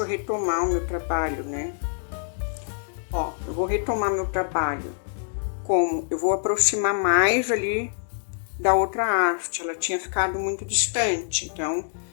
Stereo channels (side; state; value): right; silent; digital silence